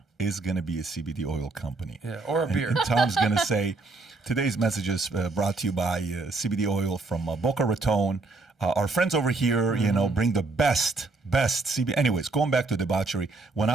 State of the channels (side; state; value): left; quieter; 3.5 dB